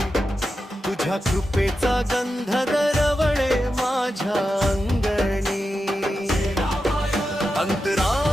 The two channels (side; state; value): both; normal; correlation 0.90